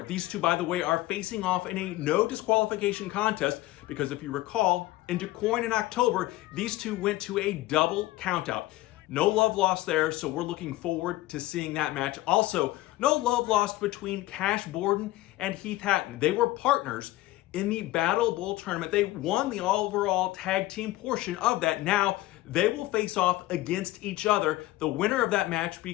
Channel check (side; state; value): right; quieter; 17.3 dB